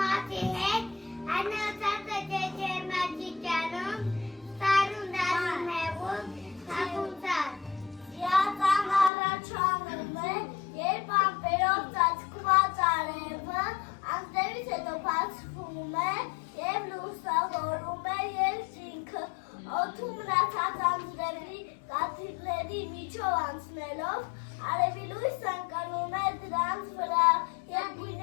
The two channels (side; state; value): right; drops out; at 9.1 s